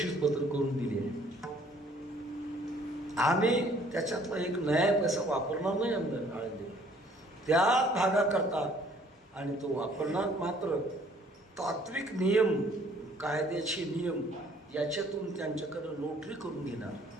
करून दिली आहे. आम्ही त्याच्यातला एक नया पैसा वापरणार नाही आमदार आळंदी त्या भागाकरता, आणि तो वापरणार मात्र तात्विक नियम, कायद्याचे नियम याच्यातून त्यांच्याकडं नोटरी करून घेणार.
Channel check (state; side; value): normal; both; correlation 0.59